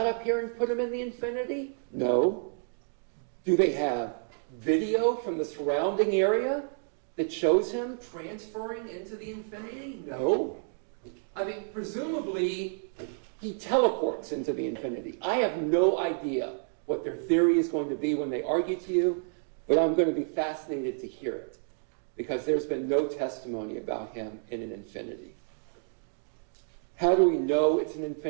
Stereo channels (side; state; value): left; silent; digital silence